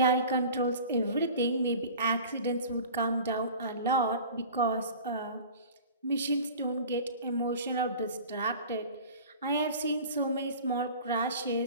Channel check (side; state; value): both; inverted; correlation -0.40